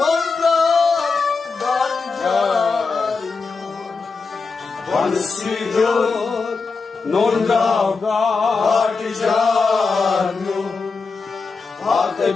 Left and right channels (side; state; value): right; quieter; 4.5 dB